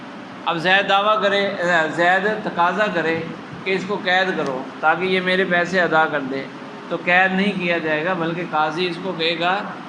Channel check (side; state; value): both; identical; correlation 1.00